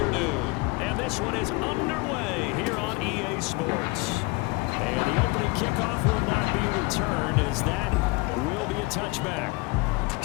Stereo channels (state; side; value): quieter; right; 26.1 dB